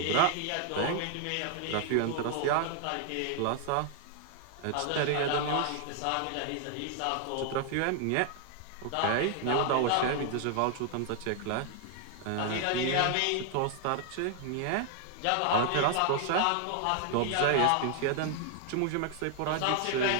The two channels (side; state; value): both; different; correlation 0.00